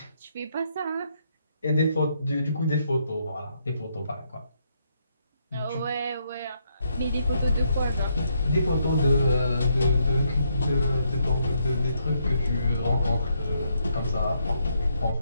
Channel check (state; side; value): inverted; both; correlation -0.75